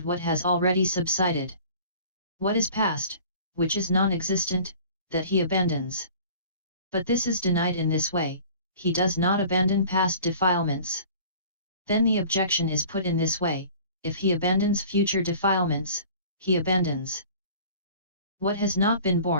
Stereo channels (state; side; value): inverted; both; correlation -0.46